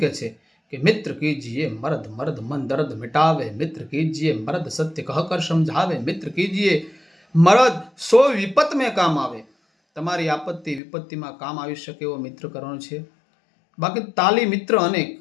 કહે છે કે મિત્ર કીજીએ મર્દ મર્દ મન દર્દ મિટાવે, મિત્ર કીજીએ મર્દ સત્ય કહ કર સમझावे, મિત્ર કીજીએ મર્દ સો વિપત મેં કામ આવે. તમારી આપત્તિ વિપત્તિમાં કામ આવી શકે એવો મિત્ર કરવાનો છે. બાકી તાલી મિત્ર અનેક,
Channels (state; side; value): drops out; right; at 10.8 s